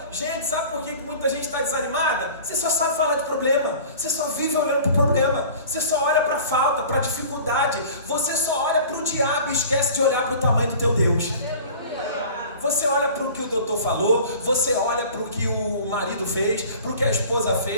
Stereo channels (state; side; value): inverted; both; correlation -0.43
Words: Gente, sabe por que muita gente está desanimada? Você só sabe falar de problema. Você só vive olhando para o problema. Você só olha para a falta, para a dificuldade. Você só olha para o diabo e esquece de olhar para o tamanho do teu Deus. Você olha para o que o doutor falou, você olha para o que o marido fez, para o que a esposa